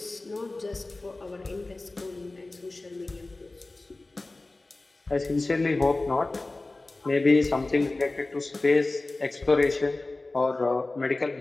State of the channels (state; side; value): quieter; right; 3.1 dB